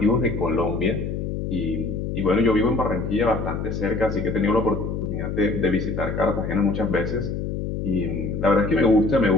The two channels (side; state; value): left; noise; hum, 3 dB below the sound